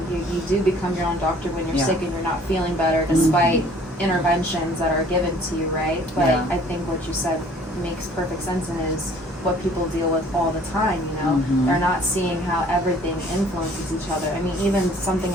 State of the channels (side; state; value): both; normal; correlation 0.54